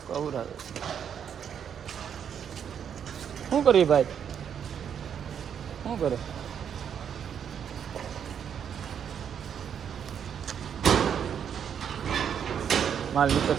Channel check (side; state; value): left; quieter; 8.2 dB